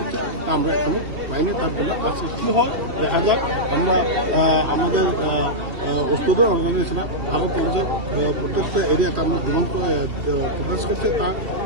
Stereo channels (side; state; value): left; late; 3.3 ms